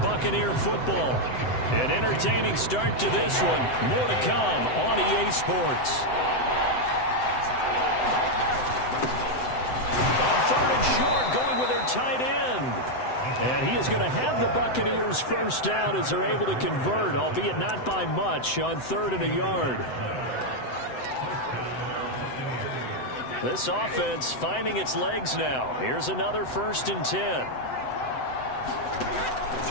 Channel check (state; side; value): late; right; 7.9 ms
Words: football. An entertaining start to this one. More to come on EA Sports. On 3rd and short, going with their tight end. And he is going to have the Buccaneers first down as they're able to convert, albeit not by much, on 3rd and a yard. This offense finding its legs now. Here's another 1st and 10.